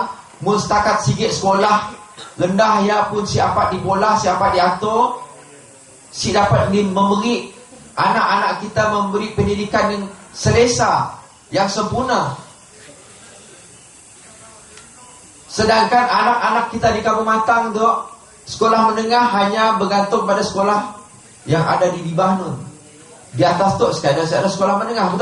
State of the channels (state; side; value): identical; both; correlation 1.00